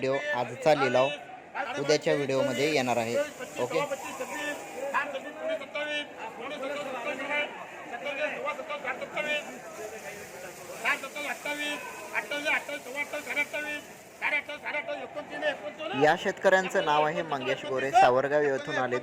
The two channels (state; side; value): identical; both; correlation 1.00